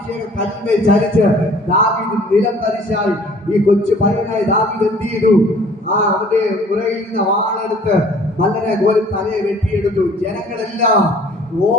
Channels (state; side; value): normal; both; correlation 0.53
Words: കല്ലിന്മേൽ ചലിച്ച് ദാവീദ് നിലം തരിശായി. ഈ കൊച്ചു പയ്യനായ ദാവീദ് എന്ത് ചെയ്തു? അവന്റെ പുറകിൽ നിന്ന് വാളെടുത്ത് മല്ലനെ പോലെ തലയെ വെട്ടിയെടുത്തു. ജനങ്ങളെല്ലാം